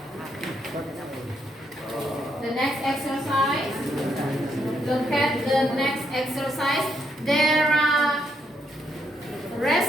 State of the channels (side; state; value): both; normal; correlation 0.76